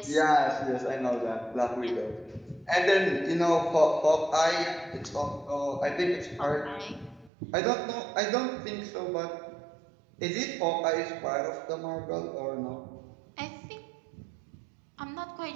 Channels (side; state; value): left; drops out; at 7.3 s